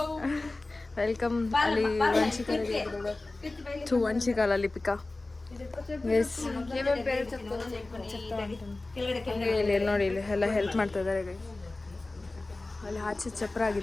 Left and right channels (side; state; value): right; quieter; 3.1 dB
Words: ವೆಲ್ಕಮ್. ಅಲ್ಲಿ ವಂಶಿಕಾಲಲ್ಲಿ ಪಿಕಾ ಗೈಸ್. ಇಲ್ಲಿ ನೋಡಿ, ಇಲ್ಲಿ ಎಲ್ಲ ಹೆಲ್ಪ್ ಮಾಡ್ತಾ ಇದ್ದಾರೆ ಗೈಸ್. ಅಲ್ಲಿ ಆಚೆ ಚಪ್ರ